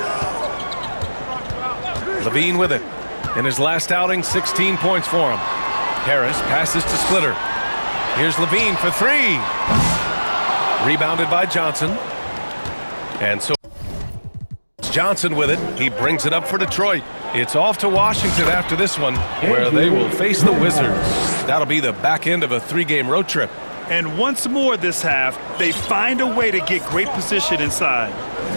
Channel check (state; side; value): inverted; both; correlation -1.00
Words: Levine with it. In his last outing, 16 points for him. Harris passes to Splitter. Here's Levine for 3. Rebounded by Johnson. And so Johnson with it. He brings it up for Detroit. It's off to Washington after this one, where they will face the Wizards. That'll be the back end of a 3-game road trip. And once more this half, they find a way to get great position inside.